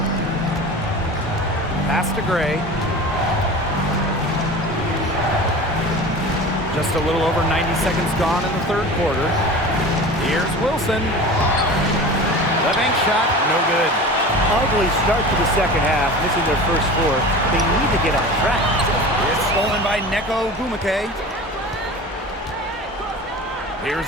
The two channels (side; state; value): both; normal; correlation 0.35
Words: Pass to Gray. Just a little over 90 seconds gone in the third quarter. Here's Wilson. The bank shot, no good. Ugly start to the second half, missing their first 4. They need to get on track. It's stolen by Neko Bumake.